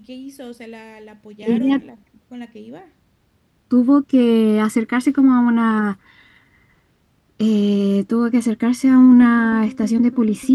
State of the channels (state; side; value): identical; both; correlation 1.00